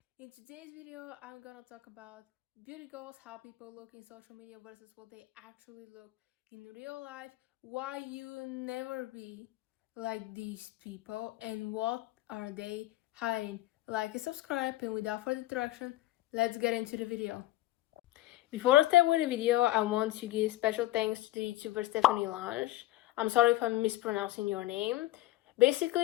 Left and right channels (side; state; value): right; quieter; 16.4 dB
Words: In today's video, I'm gonna talk about beauty goals, how people look in social media versus what they actually look in real life, why you never be like these people, and what are they hiding. Like and subscribe, and without further introduction, let's get into the video. Before I start with the video, I want to give special thanks to the YouTuber Stephanie Lange. I'm sorry if I'm mispronouncing your name.